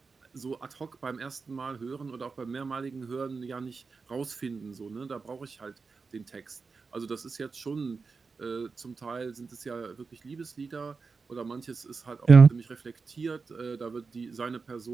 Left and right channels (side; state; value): left; quieter; 4.7 dB